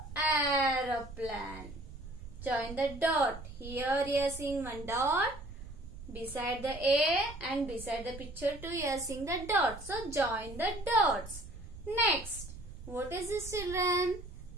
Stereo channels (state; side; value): noise; right; rumble, 13 dB below the sound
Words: aeroplane. Join the dot. Here you are seeing one dot. Beside the A and beside the picture too, you are seeing the dot. So, join the dots. Next, what is this, children?